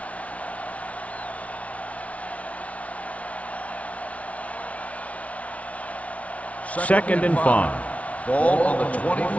Second and 5. Ball on the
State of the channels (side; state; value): right; late; 0.065 ms